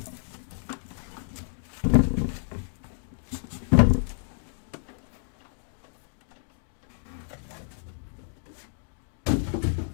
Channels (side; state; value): right; silent; digital silence